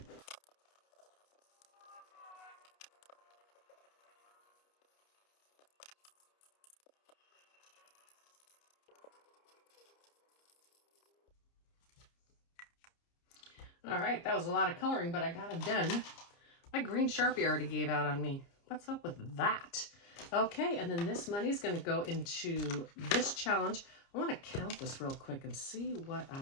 All right, that was a lot of coloring, but I got it done. My green Sharpie already gave out on me. What's up with that? Okay, and then this money is going to go into this challenge. I want to count this real quick and see what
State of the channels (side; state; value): right; late; 30 ms